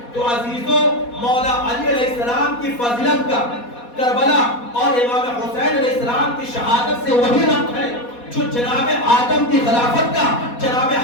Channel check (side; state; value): right; late; 4.2 ms